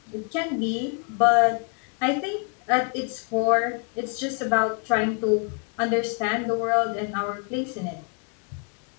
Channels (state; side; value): quieter; right; 37.9 dB